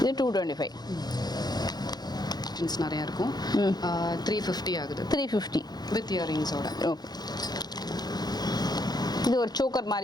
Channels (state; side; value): late; right; 0.19 ms